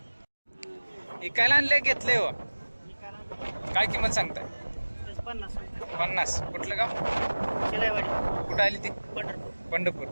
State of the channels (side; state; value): both; inverted; correlation -1.00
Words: इकायला आणले घेतले हो. काय किंमत सांगताय? 50. कुठलं गाव? कुठं आली ती? पंढरपूर.